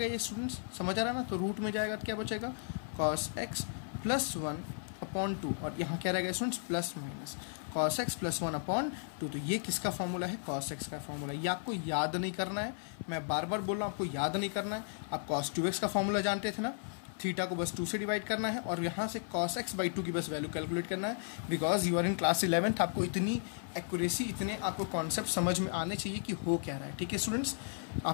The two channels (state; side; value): silent; right; 55 dB below the other